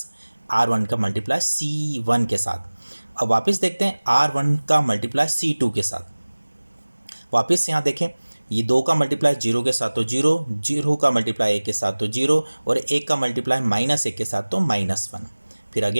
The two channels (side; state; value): both; inverted; correlation -1.00